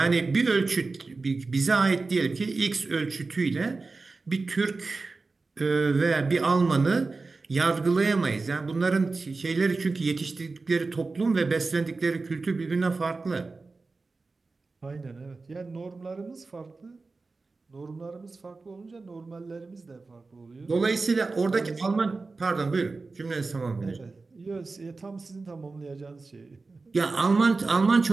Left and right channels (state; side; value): quieter; left; 3.8 dB